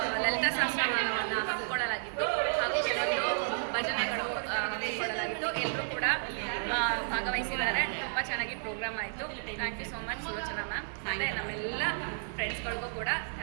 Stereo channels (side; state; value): left; silent; digital silence